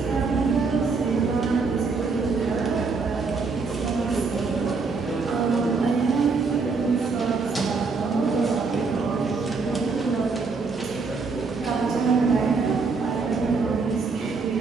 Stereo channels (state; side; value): quieter; left; 4.5 dB